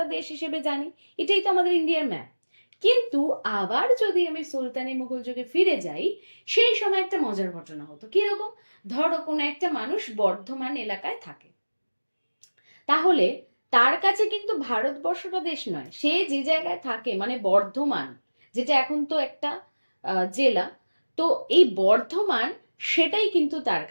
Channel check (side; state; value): both; inverted; correlation -1.00